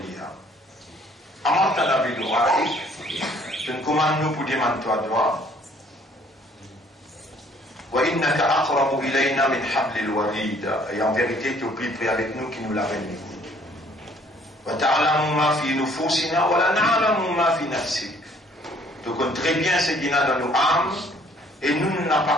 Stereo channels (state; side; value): normal; both; correlation 0.60